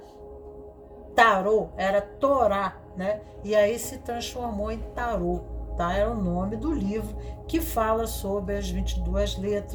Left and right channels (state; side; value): identical; both; correlation 1.00